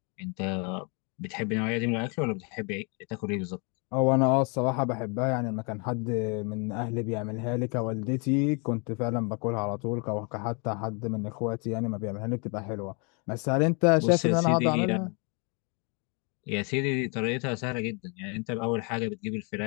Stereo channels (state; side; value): quieter; right; 34.3 dB